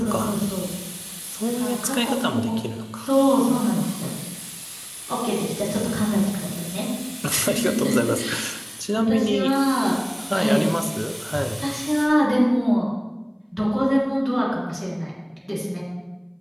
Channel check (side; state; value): both; identical; correlation 1.00